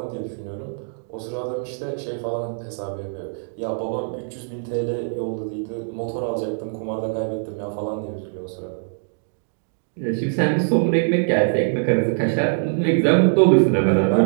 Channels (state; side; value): silent; left; digital silence